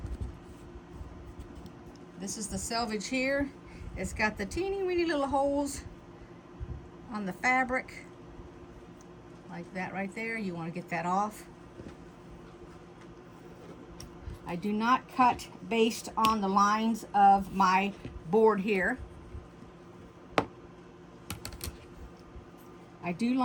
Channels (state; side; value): identical; both; correlation 1.00